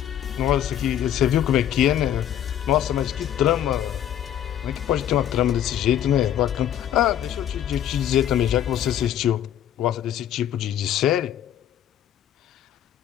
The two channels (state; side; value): quieter; right; 10.7 dB